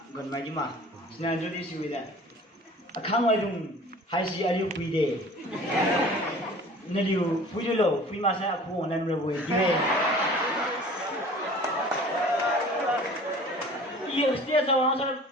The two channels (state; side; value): normal; both; correlation 0.45